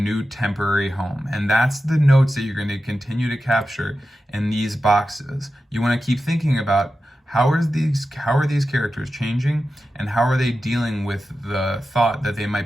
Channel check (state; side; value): normal; both; correlation 0.92